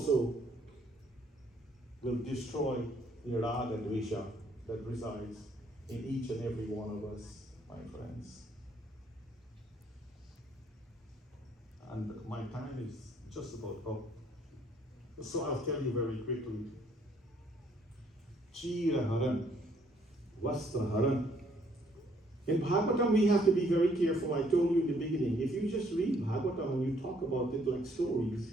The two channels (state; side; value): normal; both; correlation 0.66